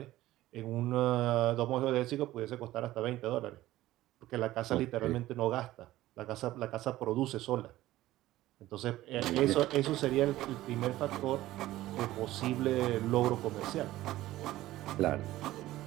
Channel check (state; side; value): quieter; left; 15.8 dB